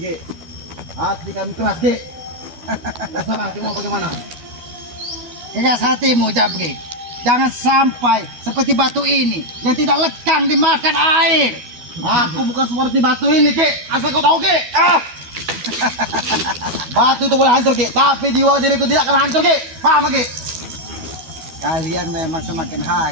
Hati kami keras, Ki. Terserah, Ki, mau bagaimana? Keras hatimu, Jabrik. Jangan sampai seperti batu ini yang tidak lekang dimakan air. Aku bukan seperti batu ini, Ki. Asal kau tahu, Ki. Batu itu boleh hancur, Ki. Tapi jiwa diriku tidak akan hancur, Ki. Paham, Ki? Kalian memang semakin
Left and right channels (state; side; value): late; left; 12 ms